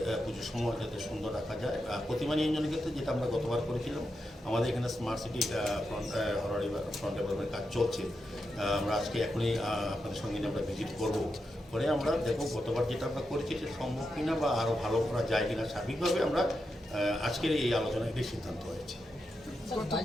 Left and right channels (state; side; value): normal; both; correlation 0.86